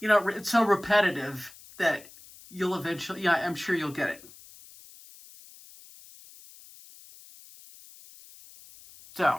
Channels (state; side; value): noise; left; hiss, 21 dB below the sound